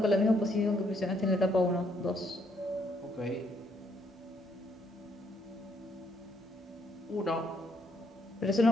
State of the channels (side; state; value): both; normal; correlation 0.71